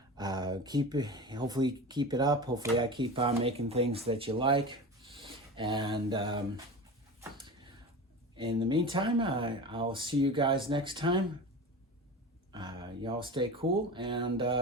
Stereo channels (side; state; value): both; normal; correlation 0.30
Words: Hopefully keep it up. Hopefully I keep on making things that you like. And in the meantime, I'll see you guys next time. Y'all stay cool and